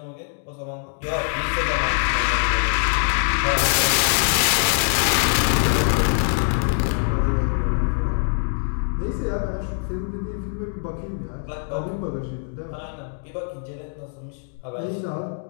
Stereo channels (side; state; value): right; silent; digital silence